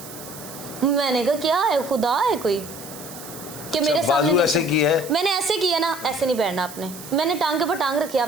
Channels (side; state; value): right; noise; hiss, 14 dB below the sound